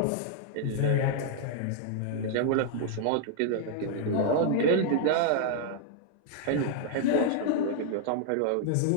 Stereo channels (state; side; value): different; both; correlation 0.00